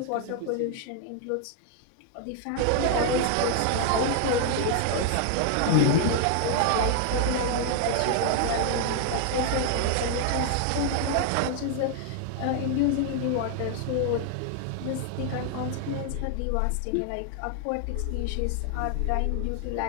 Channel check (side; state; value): both; different; correlation 0.00